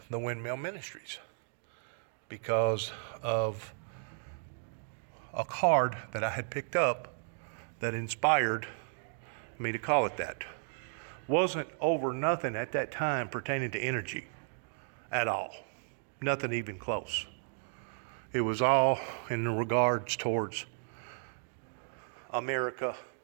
Windmill Ministries, because of a card that I had picked up that inspired me to call it that. Wasn't over nothing at that time pertaining to energy at all. Nothing even close. It was all in regards towards America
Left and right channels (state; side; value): silent; left; digital silence